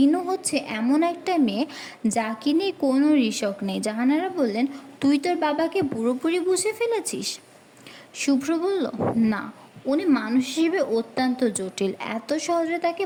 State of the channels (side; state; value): both; identical; correlation 1.00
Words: হচ্ছে এমন একটা মেয়ে যাকে নিয়ে কোনো রিস্ক নেই। জাহানারা বললেন, তুই তোর বাবাকে পুরোপুরি বুঝে ফেলেছিস? শুভ্র বলল, না, উনি মানুষ হিসেবে অত্যন্ত জটিল, এত সহজে তাকে